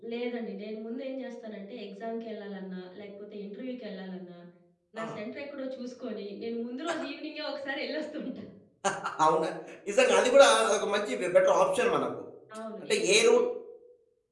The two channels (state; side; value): identical; both; correlation 1.00